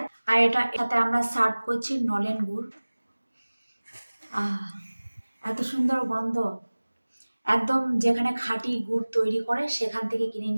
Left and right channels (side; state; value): both; inverted; correlation -1.00